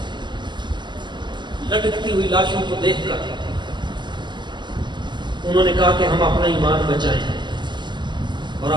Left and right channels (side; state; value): left; late; 0.22 ms